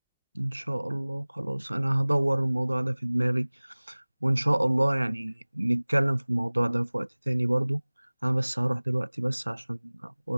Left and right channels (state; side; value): inverted; both; correlation -1.00